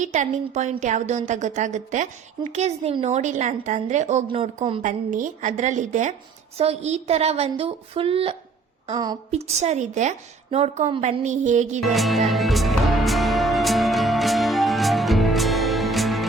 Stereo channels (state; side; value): quieter; left; 4.1 dB